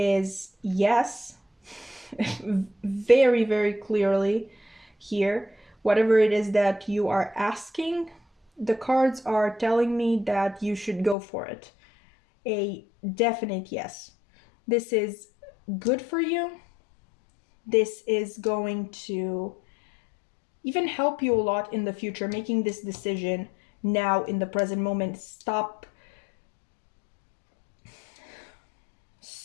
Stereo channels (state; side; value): drops out; right; at 11.2 s